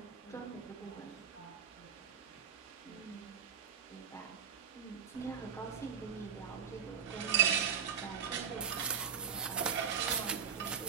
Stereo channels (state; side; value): quieter; left; 7.7 dB